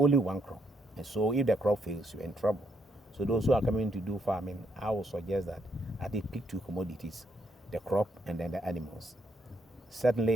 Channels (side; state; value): both; normal; correlation 0.75